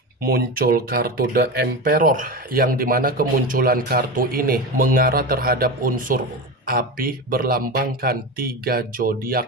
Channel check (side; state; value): both; normal; correlation 0.23